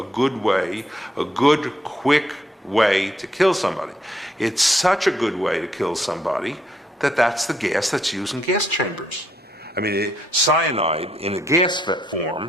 good way, a good, quick way to kill somebody. It's such a good way to kill somebody that that's the gas that's used in gas chambers. I mean, cyanide in a gas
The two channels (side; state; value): both; normal; correlation 0.73